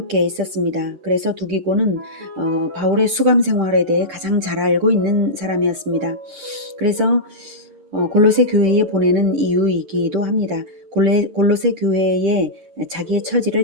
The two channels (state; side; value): late; left; 6.7 ms